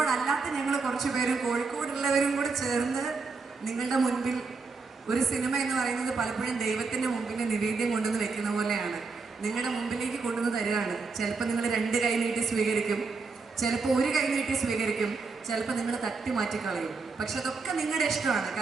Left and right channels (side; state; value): left; quieter; 4.4 dB